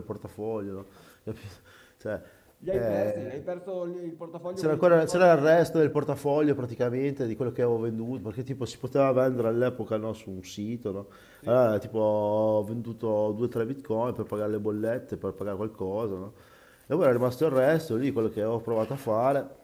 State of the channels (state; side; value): identical; both; correlation 1.00